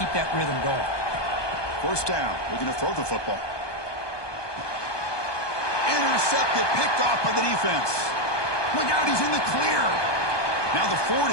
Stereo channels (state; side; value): late; right; 1.2 ms